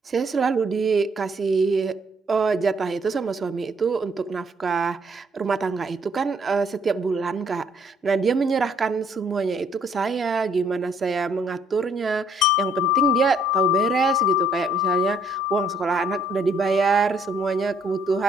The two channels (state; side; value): normal; both; correlation 0.66